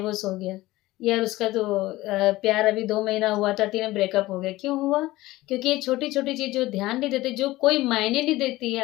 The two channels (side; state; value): right; quieter; 18.0 dB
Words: हो गया, यार उसका तो प्यार अभी 2 महीना हुआ था, 3 ब्रेकअप हो गया। क्यों हुआ? क्योंकि ये छोटी-छोटी चीज़ जो ध्यान नहीं देते, जो कोई मायने नहीं देती